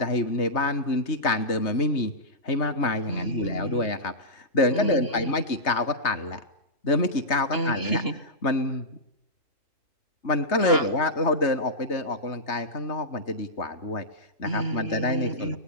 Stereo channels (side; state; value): right; late; 3.2 ms